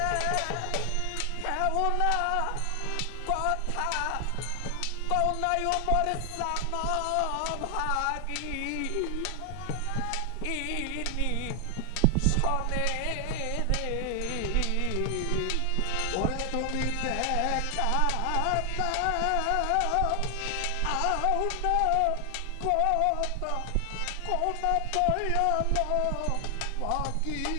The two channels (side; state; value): both; different; correlation 0.00